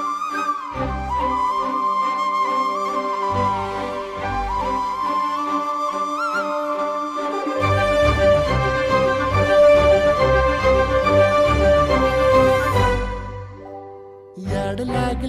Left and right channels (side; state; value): both; identical; correlation 1.00